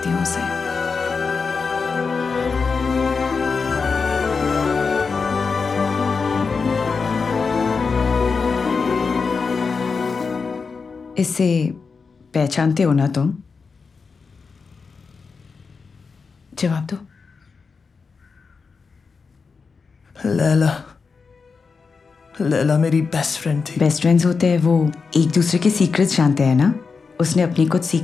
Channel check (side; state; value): right; quieter; 5.0 dB